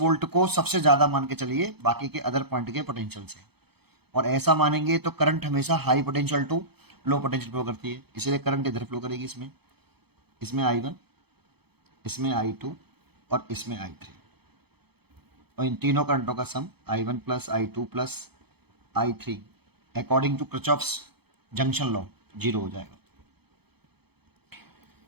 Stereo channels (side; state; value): left; late; 0.97 ms